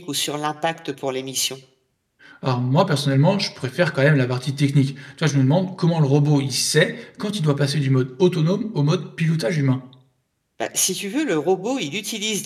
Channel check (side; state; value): both; identical; correlation 1.00